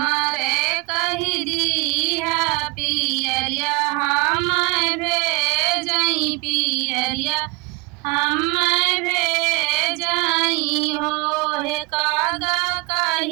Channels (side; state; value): left; quieter; 26.2 dB